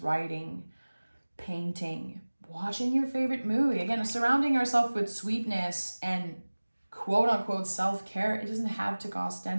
painting, watching your favorite movie. Again, surrounding yourself with sweetness and quote unquote self-care, it doesn't have to cost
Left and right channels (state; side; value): inverted; both; correlation -1.00